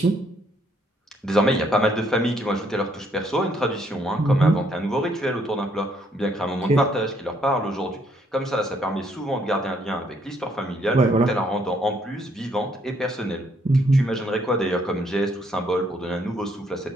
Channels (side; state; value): both; normal; correlation 0.69